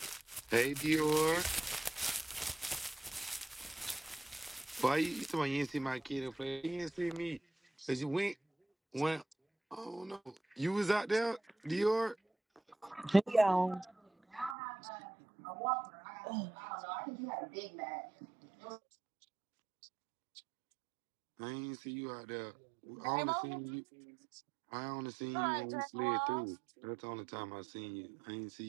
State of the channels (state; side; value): drops out; left; at 14.6 s